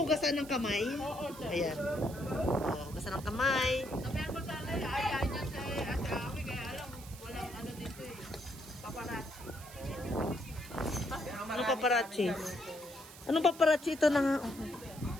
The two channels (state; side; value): noise; right; hiss, 17 dB below the sound